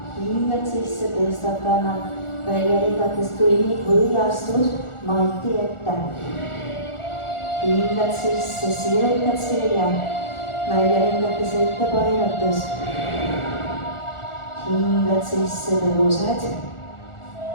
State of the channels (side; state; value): right; late; 1.4 ms